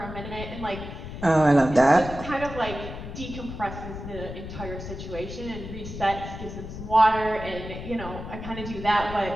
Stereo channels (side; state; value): left; noise; rumble, 9 dB below the sound